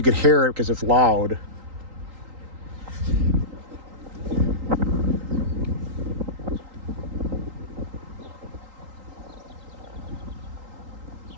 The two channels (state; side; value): late; left; 3.8 ms